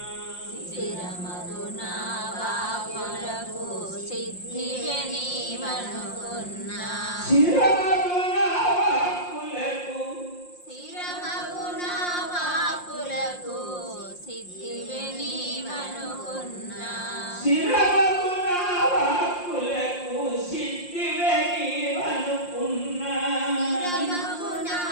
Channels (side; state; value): right; late; 5.6 ms